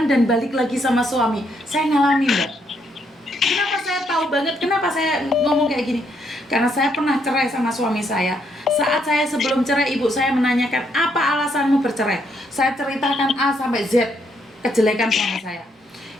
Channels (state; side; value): normal; both; correlation 0.74